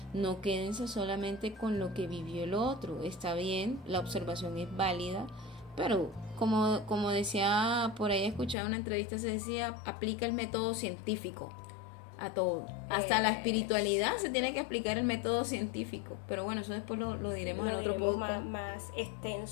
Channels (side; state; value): right; drops out; at 8.6 s